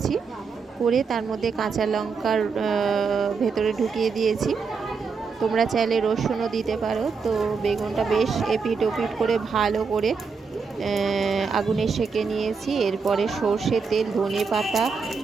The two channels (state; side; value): quieter; left; 5.2 dB